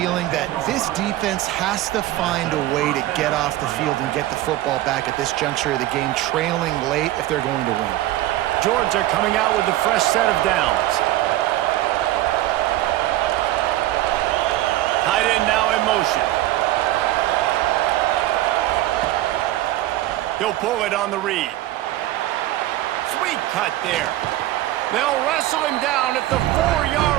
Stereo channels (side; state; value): left; quieter; 15.3 dB